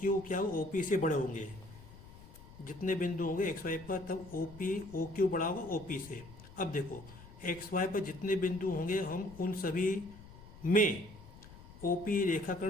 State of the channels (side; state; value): left; noise; rumble, 18 dB below the sound